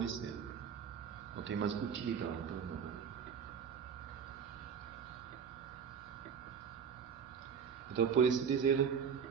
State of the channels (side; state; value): left; quieter; 7.1 dB